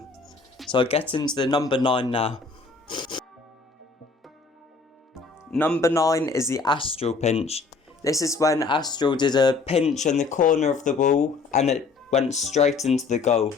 So I get into the number 9 now. Number 9 is the AZTRAL pinch. This is when AZTRAL did a pinch in the corner of the ball and it went straight into the goal.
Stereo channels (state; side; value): quieter; right; 4.4 dB